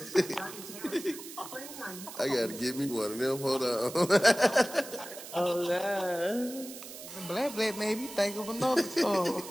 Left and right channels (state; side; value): noise; right; hiss, 13 dB below the sound